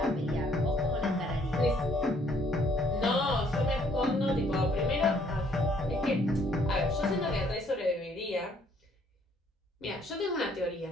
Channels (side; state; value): both; normal; correlation 0.64